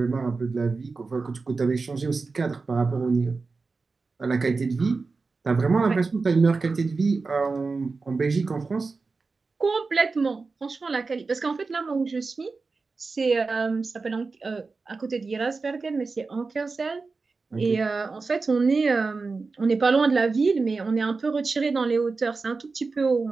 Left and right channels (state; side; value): quieter; left; 4.2 dB